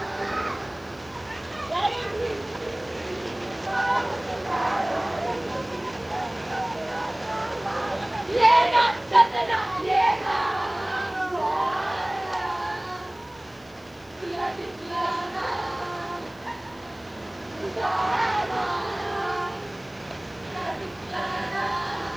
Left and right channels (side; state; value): left; noise; hiss, 29 dB below the sound